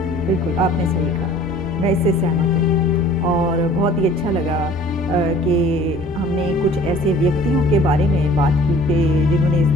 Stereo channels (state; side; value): normal; both; correlation 0.50